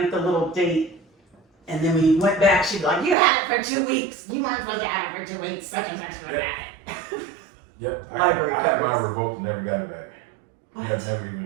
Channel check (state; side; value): drops out; left; at 3.2 s